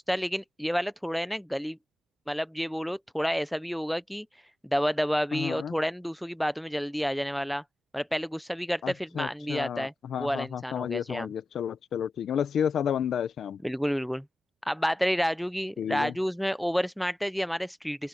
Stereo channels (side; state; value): both; normal; correlation 0.94